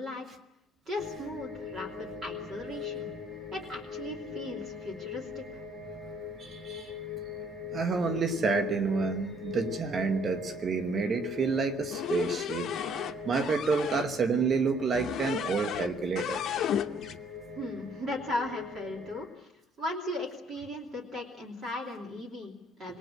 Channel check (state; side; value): normal; both; correlation 0.62